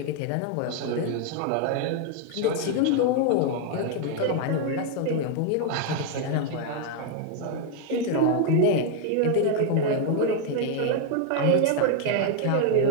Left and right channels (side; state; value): both; different; correlation 0.01